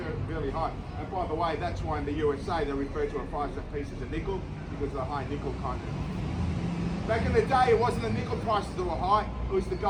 fairly high. And by the way, that's why in the USA they refer to a 5-cent piece as a nickel, because of the high nickel content. Back in the day, it wasn't the nickel prices that were high, it was the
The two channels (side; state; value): both; identical; correlation 1.00